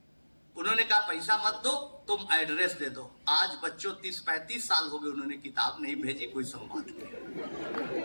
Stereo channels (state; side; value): inverted; both; correlation -1.00